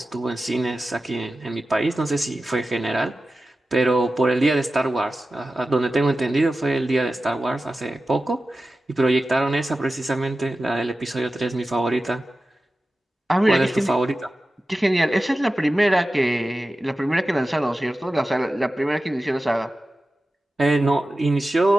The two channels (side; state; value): both; normal; correlation 0.94